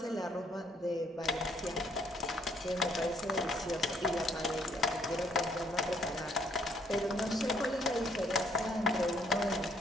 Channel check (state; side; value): normal; both; correlation 0.66